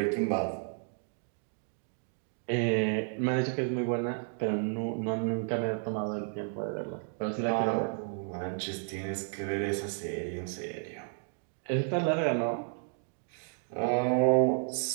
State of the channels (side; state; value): left; silent; 56 dB below the other